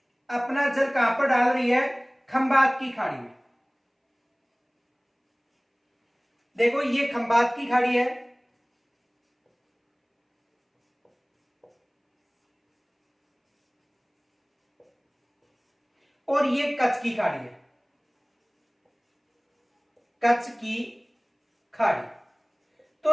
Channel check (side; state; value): both; identical; correlation 1.00